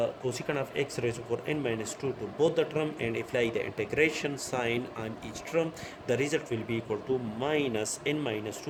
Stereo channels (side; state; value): both; identical; correlation 1.00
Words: cosecant of x raised to power n minus 2 to both the term and apply the integration sign on each term. The result will be equal to minus n minus